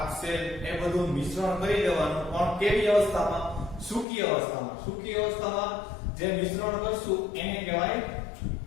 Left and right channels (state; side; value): drops out; right; at 4.0 s